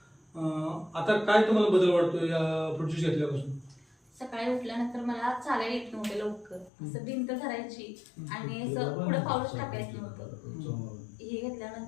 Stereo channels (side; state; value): right; drops out; at 6.7 s